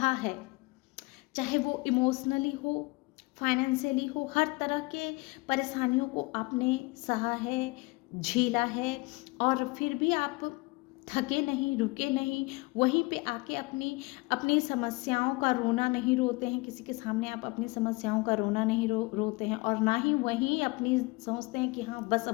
है, चाहे वो इमोशनली हो, फाइनेंशियली हो, हर तरह के परेशानियों को आपने सहा है, झेला है, और फिर भी आप थके नहीं, रुके नहीं, वहीं पे आके अपनी अपनी समस्याओं का रोना नहीं रोते हैं, किसी के सामने आप अपनी समस्याओं का रोना नहीं रोते हैं, और ना ही वहीं अपनी सोचते हैं कि हाँ बस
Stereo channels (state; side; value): quieter; right; 25.1 dB